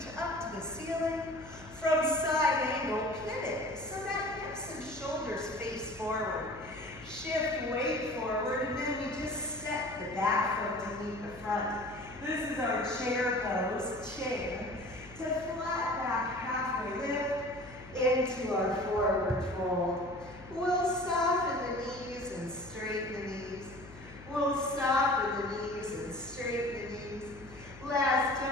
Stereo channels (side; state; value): left; noise; hum, 18 dB below the sound